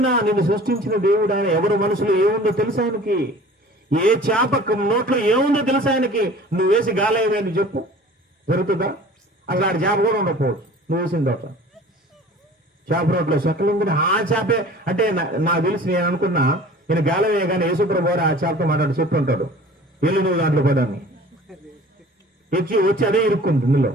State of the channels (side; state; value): both; normal; correlation 0.45